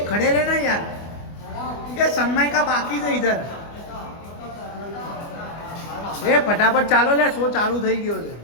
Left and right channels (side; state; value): right; late; 24 ms